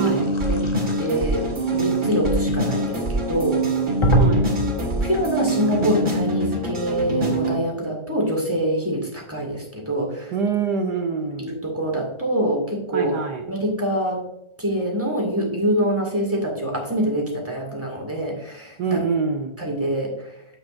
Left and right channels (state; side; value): late; left; 1.4 ms